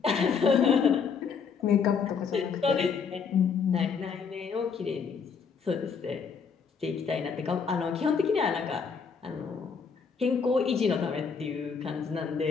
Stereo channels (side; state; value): right; quieter; 5.9 dB